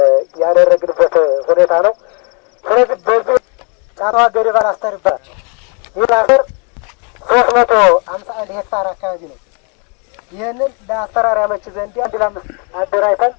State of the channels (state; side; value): quieter; right; 36.4 dB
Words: ያደረግንበት ሁኔታ ነው። ስለዚህ በዚህ ጫቷ ገደባ አስተር ይባላል። ይህ አስተር 351 ሄክታር አካባቢ ነው። ይህንን ለአሰራር ያመች ዘንድ 1 ለ5 አደራጅተን